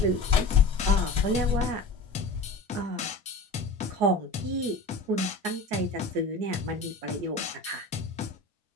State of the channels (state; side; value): quieter; right; 3.1 dB